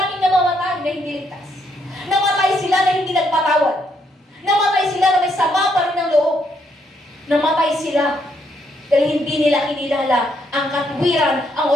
namamatay na hindi ligtas. Namatay sila na hindi nagpatawad. Namatay sila na may sama pa rin ng loob. Namatay sila dahil hindi nila kinilala ang katwiran, ang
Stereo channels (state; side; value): normal; both; correlation 0.74